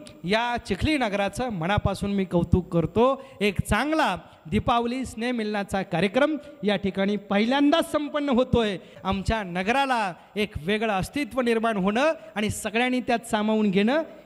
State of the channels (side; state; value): both; identical; correlation 1.00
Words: या चिखली नगराचं मनापासून मी कौतुक करतो. एक चांगला दीपावली स्नेहमिलनाचा कार्यक्रम या ठिकाणी पहिल्यांदाच संपन्न होतोय. आमच्या नगराला एक वेगळं अस्तित्व निर्माण होणं आणि सगळ्यांनी त्यात सामावून घेणं